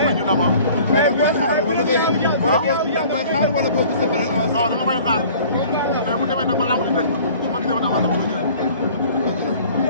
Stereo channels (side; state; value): both; inverted; correlation -0.49